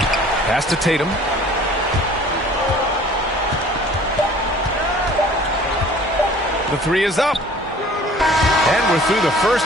Pass to Tatum. The 3 is up. And we're through the first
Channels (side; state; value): both; normal; correlation 0.50